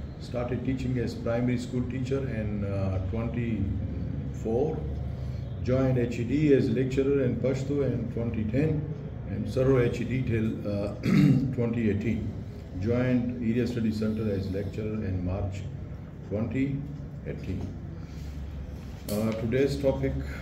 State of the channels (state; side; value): identical; both; correlation 1.00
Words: Started teaching as primary school teacher in 24. Joined HED as lecturer in Pashto in 2010 and served HED till 2018. Joined Area Study Center as lecturer in March 2018. Today's topic